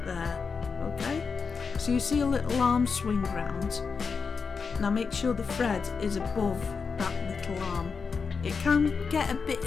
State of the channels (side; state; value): right; quieter; 5.3 dB